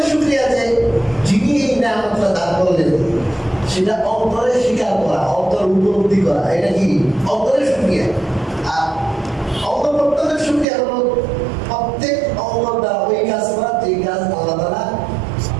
শুকরিয়া যে যিনি এই নিয়ামতটা দান করলেন সেটা অন্তরে স্বীকার করা অন্তর উপলব্ধি করা এটা কি অন্তরের শুকরিয়া আর অন্তর্বর্তনের শুকরিয়া হলো প্রত্যেক অন্তর দ্বারা ওই কাজ করা যে কাজ আল্লাহ তাআলা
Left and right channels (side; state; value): left; drops out; at 10.7 s